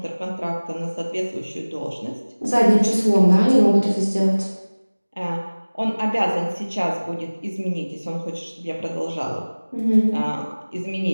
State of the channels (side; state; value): both; inverted; correlation -1.00